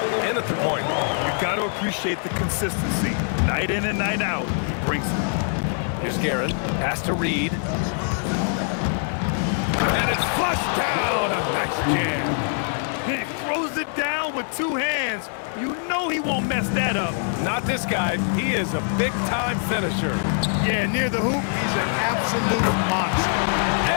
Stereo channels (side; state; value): right; silent; 56 dB below the other